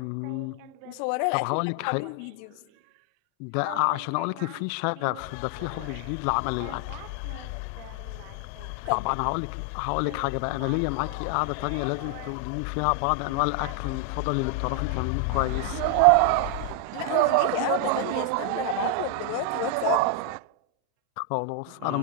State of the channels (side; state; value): both; different; correlation 0.00